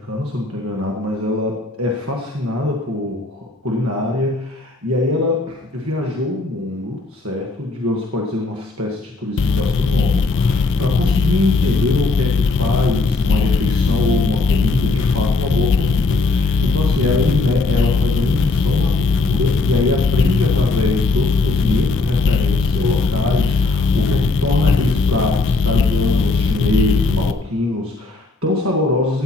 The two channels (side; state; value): right; quieter; 3.5 dB